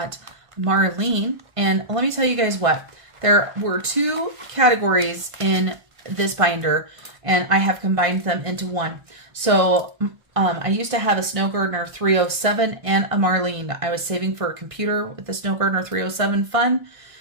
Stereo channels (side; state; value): left; late; 1.6 ms